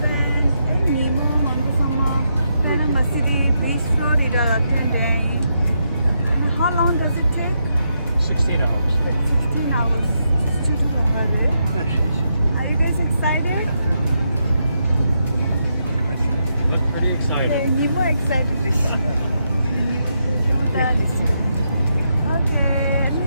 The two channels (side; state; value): both; inverted; correlation -0.81